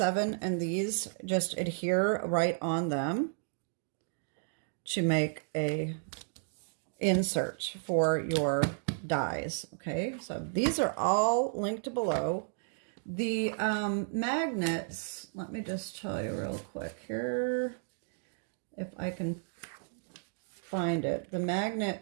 and these just adhere right on them to make a insert for your dies, okay? So these are all linked below. The magnets, let me just tell you real quick here, if I can find it. The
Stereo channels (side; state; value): left; silent; digital silence